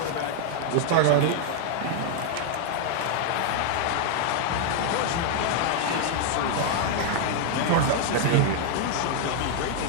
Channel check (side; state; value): both; different; correlation 0.00